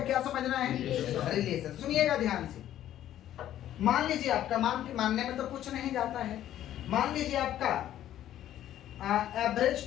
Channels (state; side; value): quieter; right; 12.1 dB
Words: क्या समझना है? रिलेशन। सुनिएगा ध्यान से। मान लीजिए आपका, मानने में तो कुछ नहीं जाता है, मान लीजिए आपका एवरेज